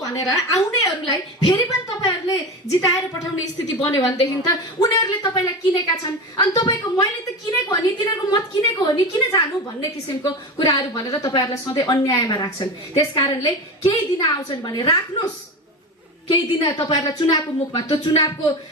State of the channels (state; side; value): normal; both; correlation 0.24